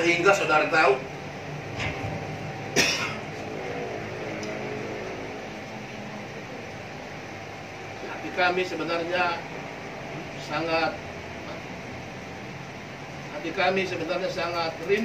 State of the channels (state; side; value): identical; both; correlation 1.00